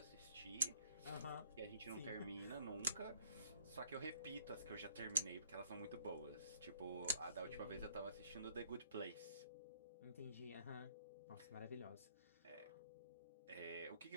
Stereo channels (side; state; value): both; inverted; correlation -0.62